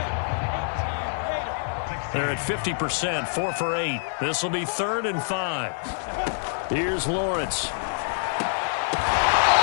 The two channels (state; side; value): silent; right; 61 dB below the other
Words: They're at 50%, 4 for 8. This will be 3rd and 5. Here's Lawrence.